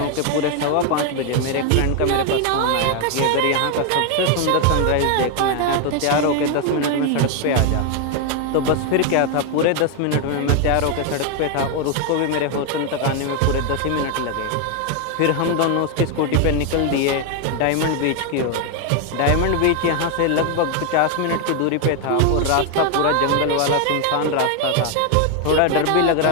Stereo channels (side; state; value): both; different; correlation 0.01